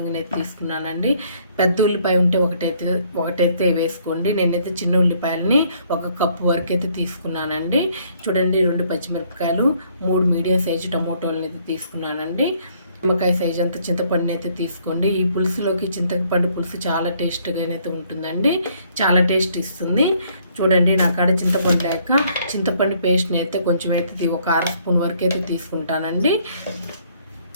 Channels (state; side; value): inverted; both; correlation -0.65